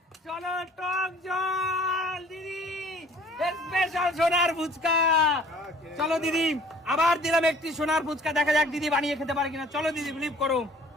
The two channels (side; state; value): both; normal; correlation 0.52